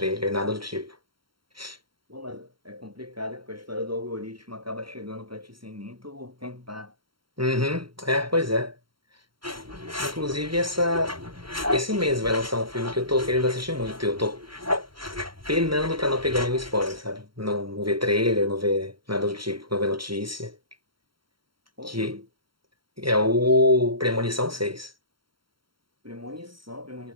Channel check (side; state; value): left; late; 0.73 ms